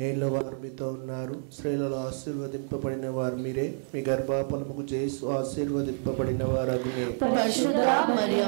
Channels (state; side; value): silent; left; 59 dB below the other